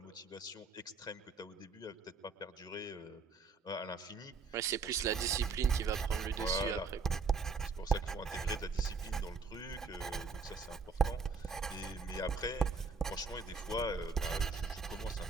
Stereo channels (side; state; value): left; quieter; 4.4 dB